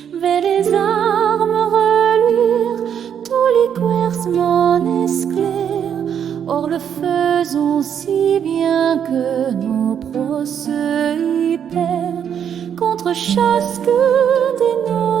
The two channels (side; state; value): left; quieter; 8.5 dB